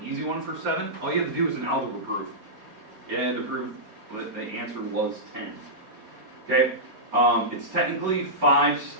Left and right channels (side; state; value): left; late; 4.3 ms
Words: easy one for 7. All you have to do is an algebra proof. You had to prove that the answer was 10. Okay? It's technically 5